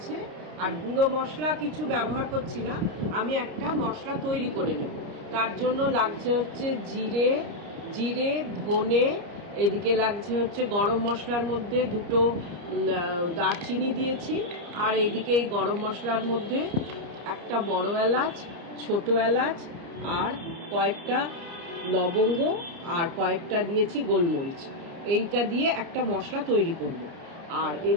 আর গুঁড়ো মশলা কিছু ব্যবহার করছি না, আমি একটা মশলা তৈরি করে নেব। তার জন্য লাগছে হচ্ছে জিরে, ধনে, এদিকে লাগছে হচ্ছে গরম মশলার মধ্যে 2টো দারচিনি দিয়েছি, আর এদিকে এই গরম মশলার মধ্যে একটা বড় এলাচ, ছোট এলাচ, আর কয়েকটা লবঙ্গ, আর কয়েকটা দিয়েছি গোলমরিচ। এইটা দিয়ে একটা মশলা তৈরি করব। আর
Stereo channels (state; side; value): late; left; 29 ms